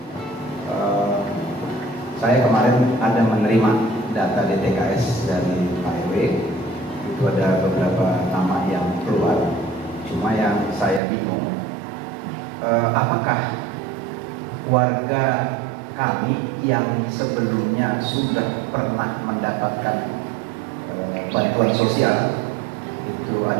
Saya kemarin ada menerima data DTKS dari Pak RW. Itu ada beberapa nama yang keluar. Cuma yang saya bingung, apakah warga kami yang sebelumnya sudah pernah mendapatkan bantuan sosial, itu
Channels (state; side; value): drops out; left; at 11.0 s